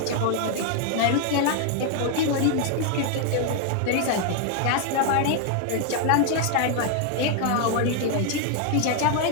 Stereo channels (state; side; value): different; both; correlation 0.00